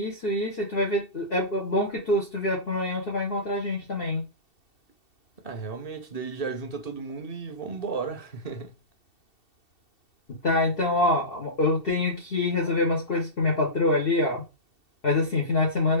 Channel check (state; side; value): late; right; 2.7 ms